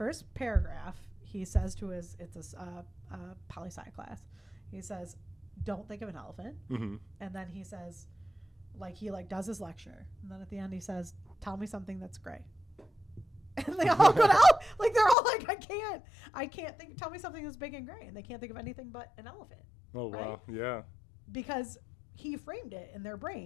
paragraph. He says to it's a poli-sci class. He says, "Don't think of an elephant," and then he says, he does his lecture, and then at the end he says, "Tell me something that's gray." And they all go down, they're all like, I can't think. Tell me something that's big and gray, and they can't think of anything but an elephant. Oh right? Wow, yeah. Because he framed it in their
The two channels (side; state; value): right; drops out; at 15.2 s